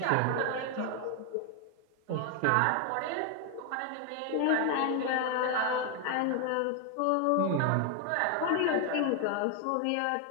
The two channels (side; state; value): both; different; correlation 0.01